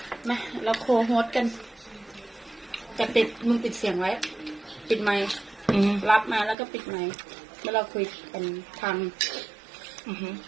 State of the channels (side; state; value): left; drops out; at 6.6 s